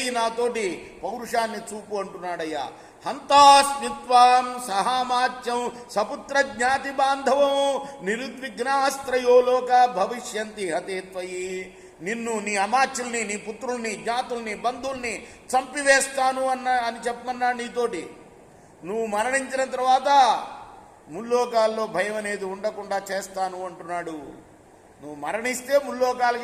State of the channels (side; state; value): both; identical; correlation 1.00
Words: నాతోటి పౌరుషాన్ని చూపు అంటున్నాడయ్యా. హంతాస్మిత్వాం సహామాత్యం సపుత్ర జ్ఞాతి బాంధవం నిరుద్విగ్నాస్త్రయో లోక భవిష్యంతి హతే త్వయి. నిన్ను, నీ అమాత్యుల్ని, నీ పుత్రుల్ని, జ్ఞాతుల్ని, బంధువుల్ని చంపివేస్తాను అని చెప్పమన్నాడు నీతోటి. నువ్వు మరణించిన తర్వాత ముల్లోకాల్లో భయం అనేది ఉండకుండా చేస్తాను అంటున్నాడు. నువ్వు మరణిస్తే